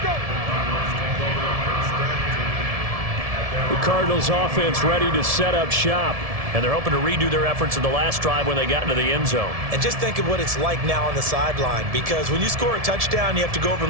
The Cardinals offense ready to set up shop. And they're hoping to redo their efforts in the last drive when they got into the end zone. And just think of what it's like now on the sideline, because when you score a touchdown, you have to go over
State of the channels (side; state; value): left; late; 1.7 ms